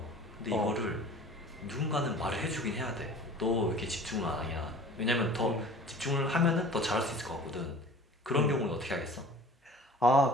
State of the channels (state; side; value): normal; both; correlation 0.44